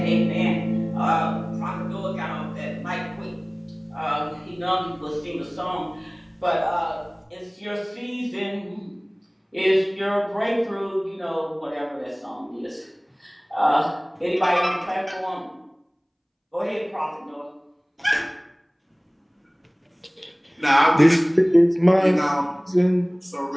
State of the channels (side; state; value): both; identical; correlation 1.00